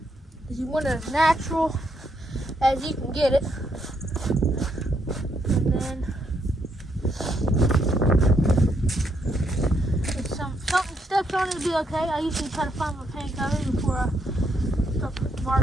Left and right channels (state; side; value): normal; both; correlation 0.76